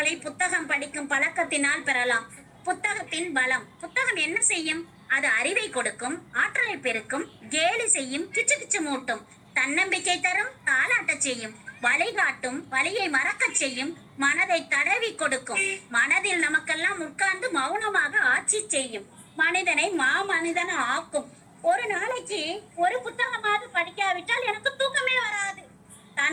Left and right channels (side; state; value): both; identical; correlation 1.00